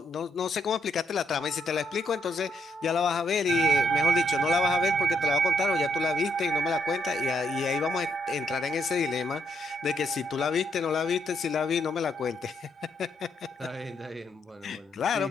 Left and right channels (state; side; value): normal; both; correlation 0.75